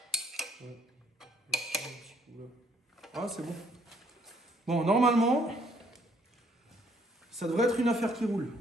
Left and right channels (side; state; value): both; normal; correlation 0.65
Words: Ouais. Un petit coup là. Ah, c'est bon. Bon, normalement, ça devrait être une affaire qui roule.